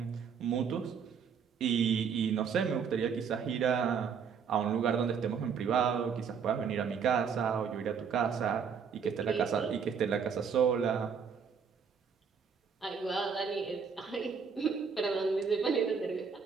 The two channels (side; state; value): left; quieter; 6.5 dB